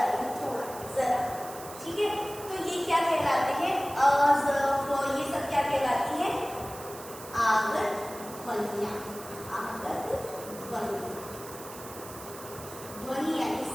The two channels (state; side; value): noise; right; hiss, 15 dB below the sound